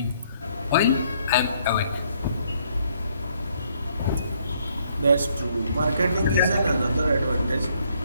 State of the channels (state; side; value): inverted; both; correlation -0.68